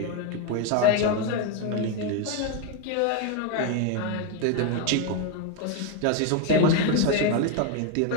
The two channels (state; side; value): different; both; correlation 0.01